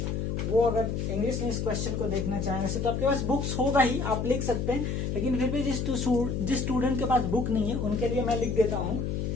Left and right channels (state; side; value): noise; left; hum, 1 dB below the sound